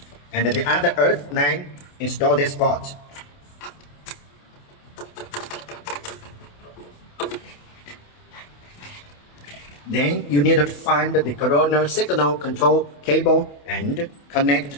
And the other earth line install this port. Then you need to find the Corolla signal control cable and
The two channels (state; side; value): late; right; 28 ms